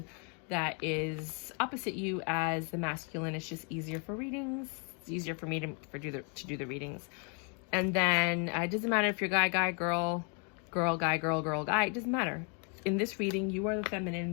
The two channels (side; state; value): right; quieter; 38.0 dB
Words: that is opposite you as the masculine. It's just easier for readings. It's easier for me to do the readings. And then it doesn't matter if you're guy, girl, guy, girl, guy. It doesn't matter. In this reading, you are the feminine,